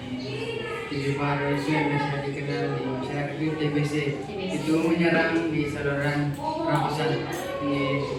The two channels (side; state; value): both; identical; correlation 1.00